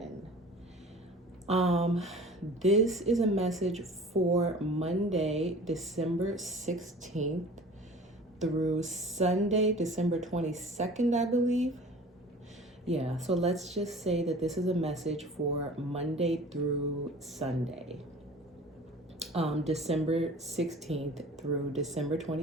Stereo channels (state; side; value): normal; both; correlation 0.43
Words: This is a message for Monday, December 16th through Sunday, December 22nd, I believe. Yeah, so let's just say that this is a message for Monday through Sunday, December 16th through December